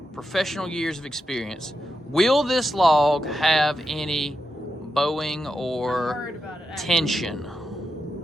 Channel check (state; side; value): normal; both; correlation 0.87